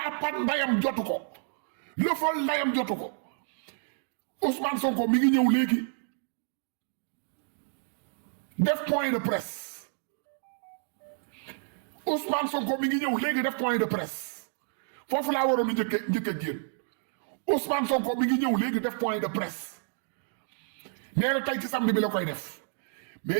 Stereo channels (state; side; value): silent; left; digital silence